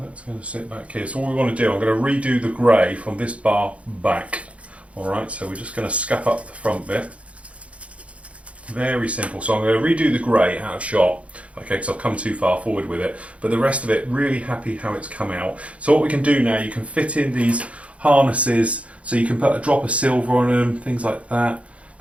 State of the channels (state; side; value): late; left; 0.063 ms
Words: that's going to sit back here. So what we want to do, I'm going to redo the grey from this bar back. Alright, so we're just going to scuff up the front bit. Very simple. So I'm going to redo the grey out of shot. Okay, because I've come too far forward with it. But the rest of it, really happy how it's come out. So what we can do now, you can fit in these harnesses. So you can put a drop of silver on them, things like that.